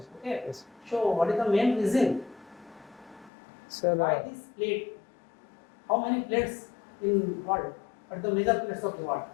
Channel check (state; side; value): drops out; right; at 3.3 s